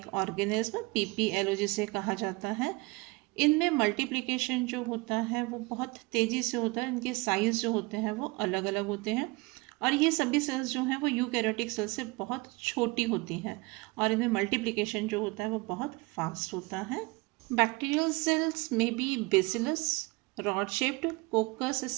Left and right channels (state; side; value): quieter; left; 24.6 dB